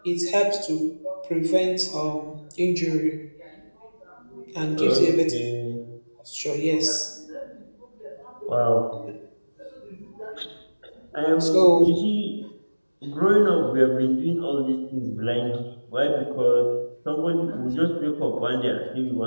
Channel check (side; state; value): both; inverted; correlation -1.00